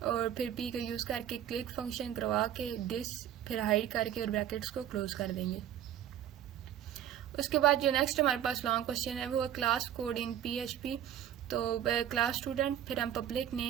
और फिर P का यूज़ करके क्लिक फंक्शन करवा के दिस फिर हाइड करके और ब्रैकेट्स को क्लोज कर देंगे। उसके बाद जो नेक्स्ट हमारे पास लॉन्ग क्वेश्चन है वो है क्लास कोड इन PHP, तो क्लास स्टूडेंट, फिर हम पब्लिक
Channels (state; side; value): quieter; left; 10.5 dB